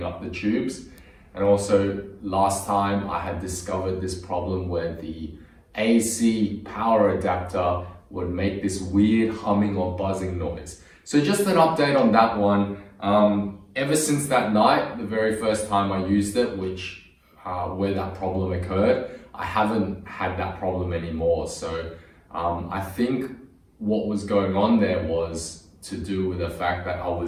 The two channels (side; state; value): both; identical; correlation 1.00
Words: up the tubes. And also last time I had discovered this problem where the AC power adapter would make this weird humming or buzzing noise. So just an update on that one. Ever since that night, the very first time I used it, where that problem occurred, I haven't had that problem anymore. So I think what was going on there was to do with the fact that I